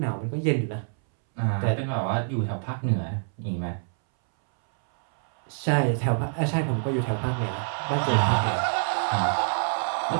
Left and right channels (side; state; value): left; silent; 61 dB below the other